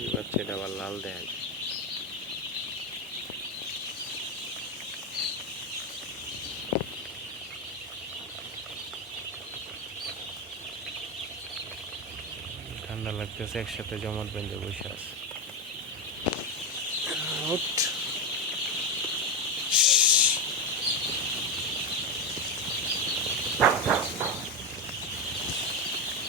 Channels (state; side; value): normal; both; correlation 0.10